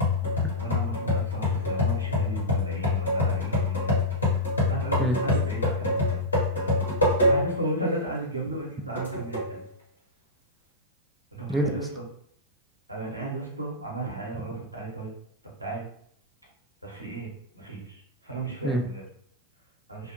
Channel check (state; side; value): normal; both; correlation -0.13